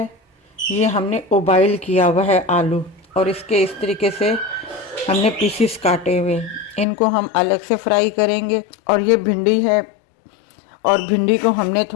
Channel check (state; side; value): drops out; right; at 6.9 s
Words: ये हमने उबाइल किया हुआ है आलू, और इसके इस तरीके से हमने पीसीस काटे हुए, इनको हम अलग से फ्राई करेंगे। और ये भिंडी है, और भिंडी को हमने